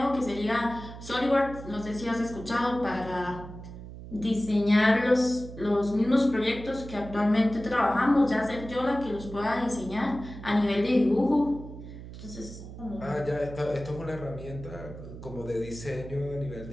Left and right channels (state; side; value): noise; right; hum, 13 dB below the sound